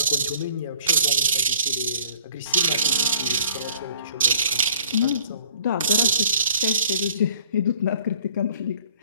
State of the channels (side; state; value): both; inverted; correlation -0.55